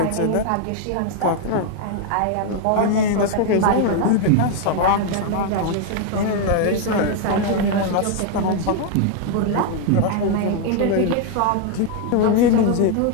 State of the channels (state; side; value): different; both; correlation 0.00